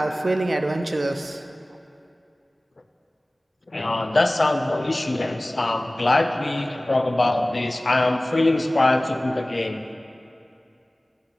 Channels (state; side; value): normal; both; correlation 0.98